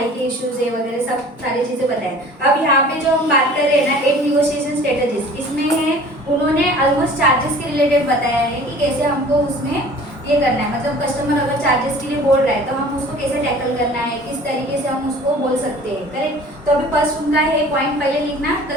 के इश्यूज है वगैरह सब सारी चीजें बताएं। अब यहाँ पे जो हम बात कर रहे हैं ना 8 निगोशिएशन स्ट्रेटजीज, इसमें है उन्होंने ऑलमोस्ट चार्जेस के रिलेटेड बताया है कि कैसे हमको उसमें ये करना है। मतलब कस्टमर अगर चार्जेस के लिए बोल रहा है तो हम उसको कैसे टैकल करना है, किस तरीके से हम उसको बोल सकते हैं करेक्ट। तो अभी फर्स्ट उनका है पॉइंट पहले लिखना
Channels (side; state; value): both; normal; correlation 0.46